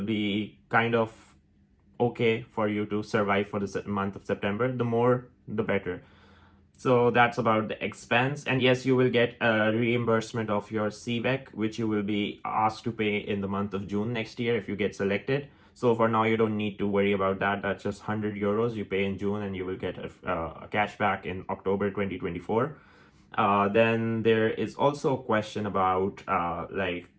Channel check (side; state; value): both; identical; correlation 1.00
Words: be kind of okay for you to survive for the month of September. The more, the better. So that's about the expense. And yes, you will get a reimbursement of your CVEC, which you will be asked to pay in the month of June next year if you get selected. So for now, you don't need to worry about that. That's just 100 euros you pay in June, and you will get a cash back in October 2024. Then there is also a question about like,